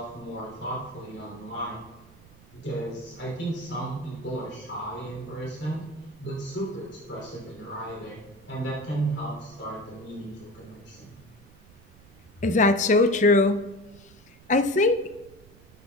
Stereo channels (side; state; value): right; noise; rumble, 24 dB below the sound